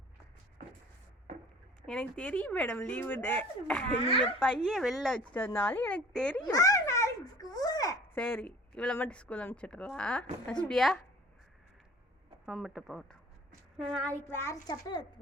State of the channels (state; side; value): normal; both; correlation 0.48